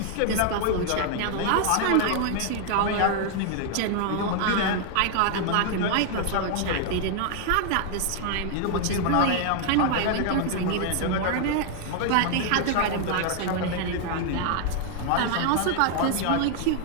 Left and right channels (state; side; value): different; both; correlation 0.00